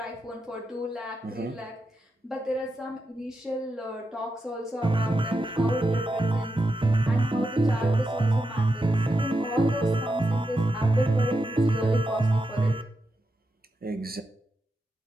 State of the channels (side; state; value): both; normal; correlation 0.86